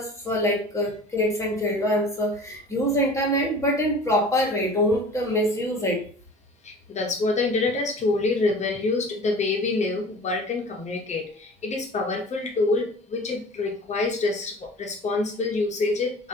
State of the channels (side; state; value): both; normal; correlation 0.42